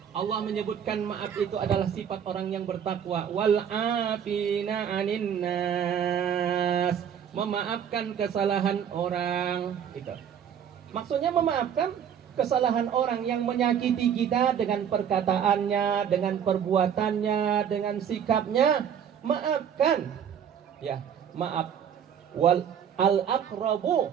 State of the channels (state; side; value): quieter; left; 8.5 dB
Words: Allah menyebutkan maaf itu adalah sifat orang yang bertakwa. Wal afina 'anin nas, memaafkan kesalahan orang. Itu maksudnya, memaafkan kesalahan orang yang menyakiti kita dengan perkataannya, dengan perbuatannya, dengan sikapnya. Maafkan, ya, maaf. Wal al-aqrabu